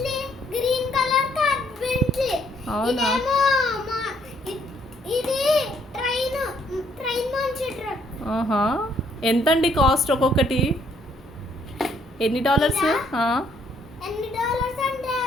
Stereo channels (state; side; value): normal; both; correlation 0.68